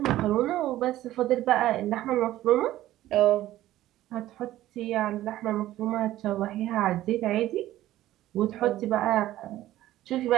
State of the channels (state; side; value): quieter; left; 14.5 dB